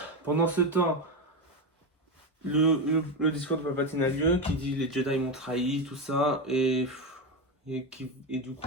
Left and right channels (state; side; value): normal; both; correlation 0.13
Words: Pendant ce temps, le discours de Palpatine a lieu, qui dit les Jedi m'ont trahi, tout ça, et du